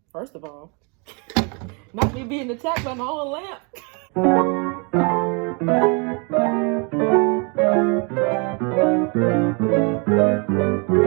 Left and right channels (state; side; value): quieter; left; 33.4 dB